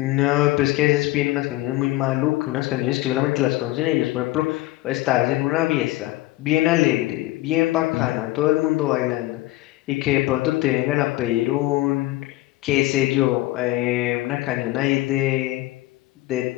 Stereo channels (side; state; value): right; quieter; 17.7 dB